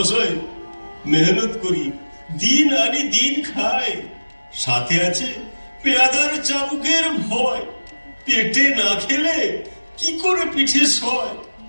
মেহনত করি, দিন আনি দিন খাই। সাথে আছে পেয়াদার চাবুকের ভয়। পেটে না খেলে কি করে পিঠে সয়।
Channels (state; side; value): inverted; both; correlation -1.00